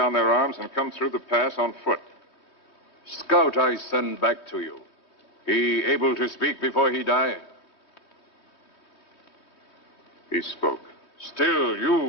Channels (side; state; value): right; late; 3.2 ms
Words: their arms and come through the pass on foot. Scout I send back to you. He able to speak before he die? He spoke. Still,